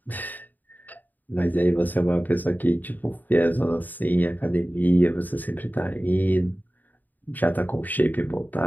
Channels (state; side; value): late; right; 0.085 ms